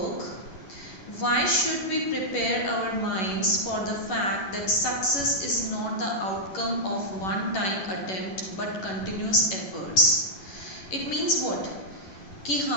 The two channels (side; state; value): right; late; 11 ms